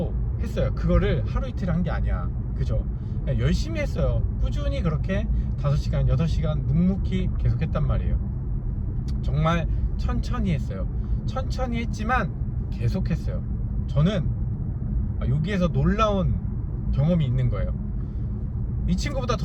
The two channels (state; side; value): identical; both; correlation 1.00